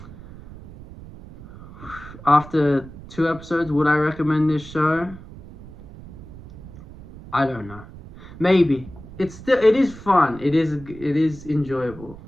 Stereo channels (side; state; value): right; noise; rumble, 17 dB below the sound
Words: after 2 episodes, would I recommend this show? I don't know. Maybe it is fun. It is enjoyable.